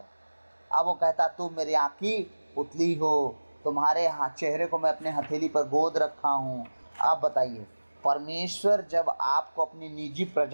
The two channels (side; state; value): both; inverted; correlation -1.00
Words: अब वो कहता तुम मेरी आँखी पुतली हो, तुम्हारे चेहरे को मैं अपने हथेली पर गोद रखा हूँ। आप बताइए, परमेश्वर जब आपको अपनी निजी